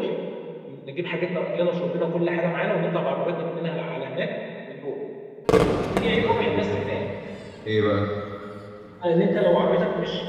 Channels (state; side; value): identical; both; correlation 1.00